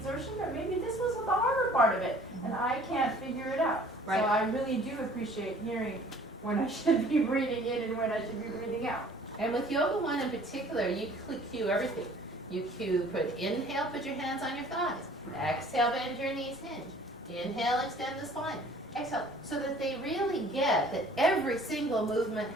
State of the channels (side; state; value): both; normal; correlation 0.52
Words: or maybe this was the harder part of it, and I can't figure it out. Right. So I really do appreciate hearing when I should be breathing in and when I should be breathing out. And with Yoga 1 in particular, you cue everything. You inhale, put your hands on your thighs. Exhale, bend your knees, hinge. Inhale, extend the spine. Exhale, so that they really get that every single movement